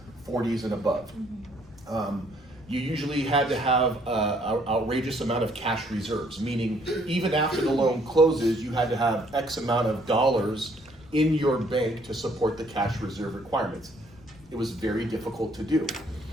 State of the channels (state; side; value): noise; left; rumble, 24 dB below the sound